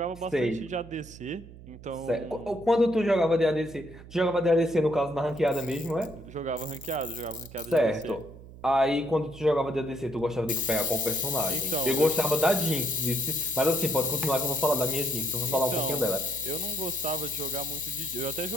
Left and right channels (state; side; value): noise; right; hum, 18 dB below the sound